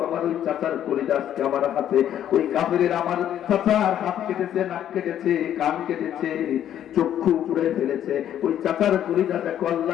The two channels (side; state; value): right; quieter; 10.7 dB